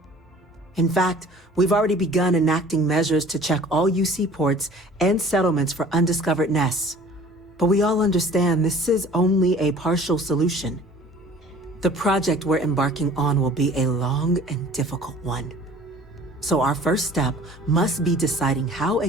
In fact, we've already begun enacting measures to check all UC ports and settlements for undiscovered nests. But we all understand this is only a partial solution. The project we're embarking on will be a long and difficult one. So our first step must be deciding how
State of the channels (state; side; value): normal; both; correlation 0.48